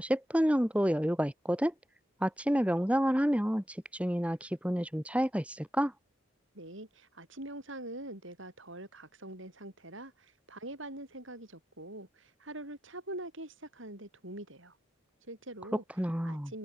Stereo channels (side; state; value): both; normal; correlation 0.92